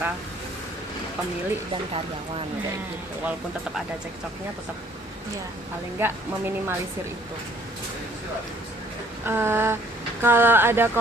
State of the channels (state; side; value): normal; both; correlation 0.59